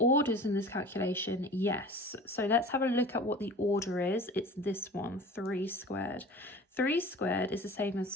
in this calculation? Yes. So let's have a look at what the order is. It's this one, 3 squared. 3 squared is the same as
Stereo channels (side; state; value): both; normal; correlation 0.40